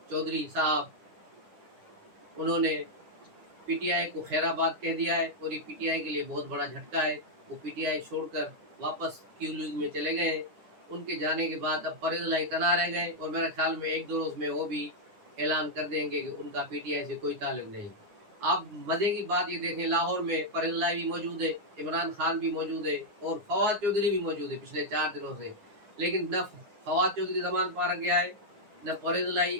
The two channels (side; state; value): left; late; 9.9 ms